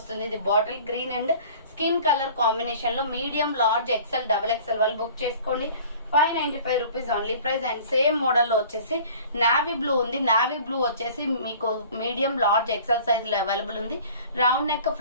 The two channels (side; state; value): both; inverted; correlation -0.47